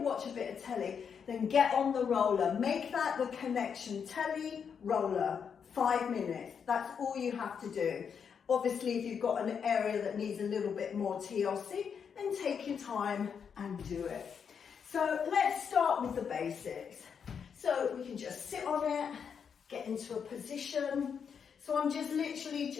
watch a bit of telly, then get on the roller. Make that the connection. Telly, roller, 5 minutes. That's all you have to do. Obviously, if you've got an area that needs a little bit more TLC, then take your time and do it. So let's start with the basics. So we can just sit on it, get into a position. So I'm just literally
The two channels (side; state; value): right; quieter; 6.9 dB